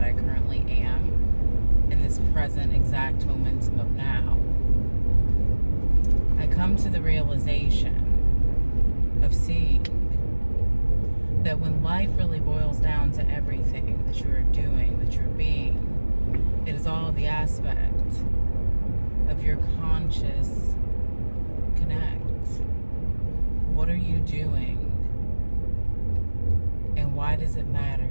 I currently am in this present exact momentum of now, I come to the realization of seeing that when life really boils down to everything that you're doing, that you're being, it is all the aspect of your conscious connect. What are you doing? And why does it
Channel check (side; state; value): both; inverted; correlation -1.00